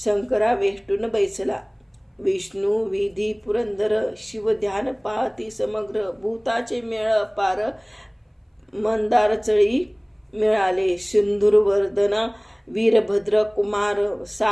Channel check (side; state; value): both; identical; correlation 1.00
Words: वेष्टून बैसला विष्णू विधी पुरंदर शिव ध्यान पाहती समग्र भूताचे मेळ पार मंदार चळी मिळाले सिंधुरवर्धन वीरभद्र कुमार